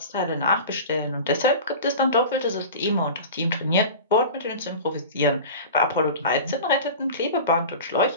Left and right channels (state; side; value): inverted; both; correlation -0.34